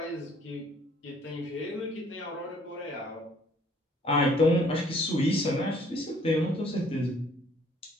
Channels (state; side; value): normal; both; correlation 0.60